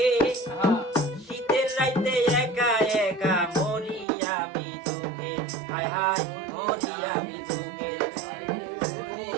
শীতের রাইতে একা একা মরি আমি দুঃখে। হায় হায় মরি আমি দুঃখে।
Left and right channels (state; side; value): drops out; left; at 4.0 s